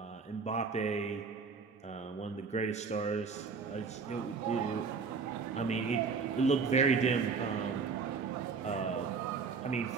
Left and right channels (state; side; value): quieter; left; 5.1 dB